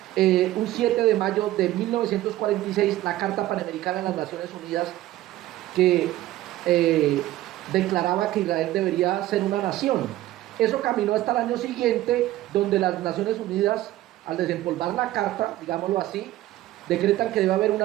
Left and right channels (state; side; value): quieter; left; 15.3 dB